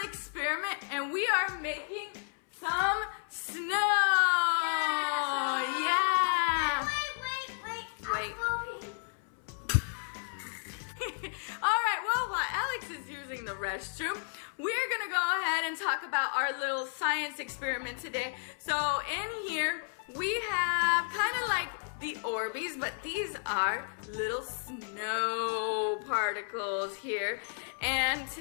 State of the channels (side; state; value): right; silent; 56 dB below the other